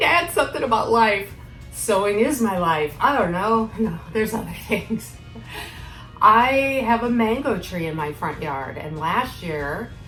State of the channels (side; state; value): both; identical; correlation 1.00